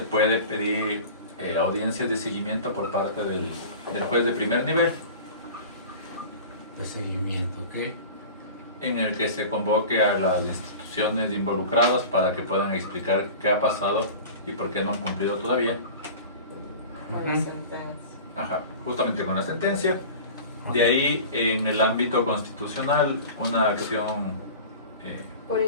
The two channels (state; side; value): inverted; both; correlation -0.37